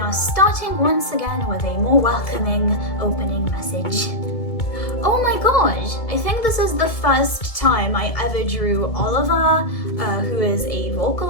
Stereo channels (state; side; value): late; right; 2.2 ms